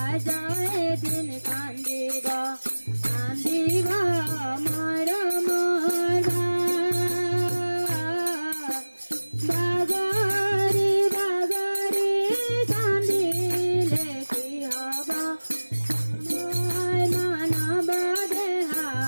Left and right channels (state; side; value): inverted; both; correlation -1.00